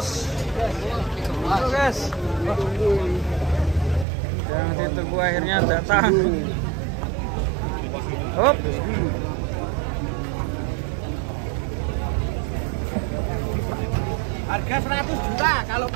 Terus guys. Yang ditunggu akhirnya datang. Hop. Harga 100 juta kalau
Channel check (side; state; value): left; drops out; at 4.0 s